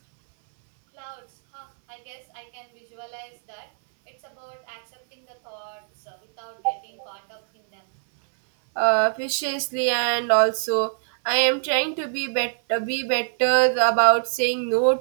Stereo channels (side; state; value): left; silent; 61 dB below the other